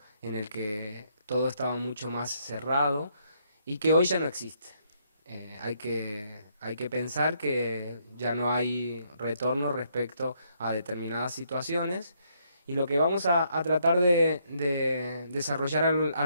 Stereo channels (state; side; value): inverted; both; correlation -0.72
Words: en el que todo estaba mucho más cerrado y que hoy ya no existe. Hay que pensar que ya no hay retorno respecto a determinadas situaciones y lo que vamos a tratar de desarrollar a